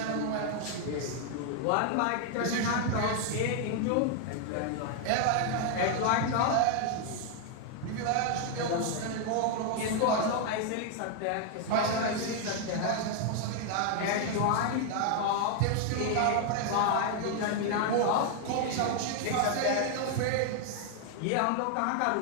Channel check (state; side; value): different; both; correlation 0.00